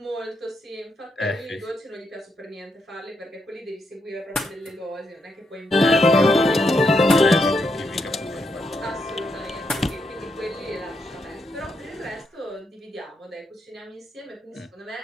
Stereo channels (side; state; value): both; normal; correlation 0.80